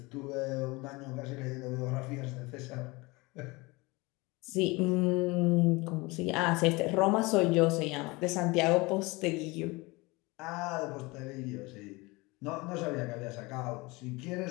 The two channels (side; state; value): right; quieter; 24.0 dB